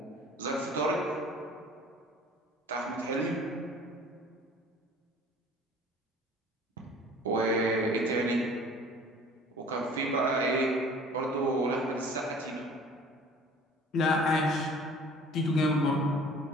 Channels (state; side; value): normal; both; correlation 0.49